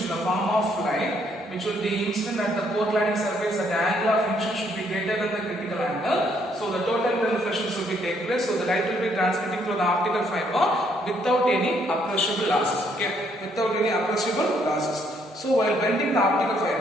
the form of light which will be incident at the core cladding surface at the angle of incidence should be greater than the critical angle. So the total reflection should be take place. So the light will be transmitting through the optical fiber without any appreciable losses. Okay, without any appreciable losses. So while bending the optical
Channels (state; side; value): normal; both; correlation 0.69